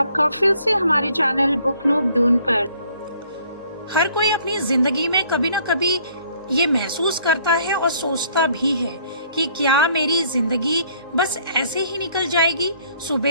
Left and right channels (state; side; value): inverted; both; correlation -0.60